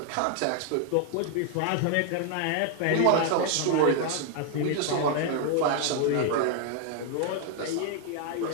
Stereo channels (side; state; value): both; different; correlation 0.00